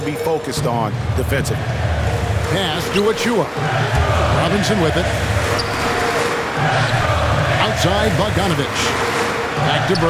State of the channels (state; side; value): identical; both; correlation 1.00